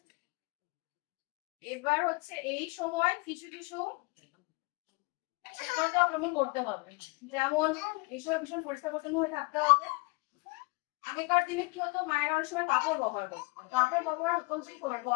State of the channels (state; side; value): quieter; right; 27.2 dB